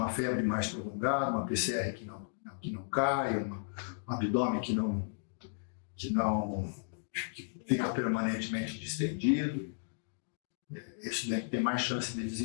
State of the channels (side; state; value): right; silent; digital silence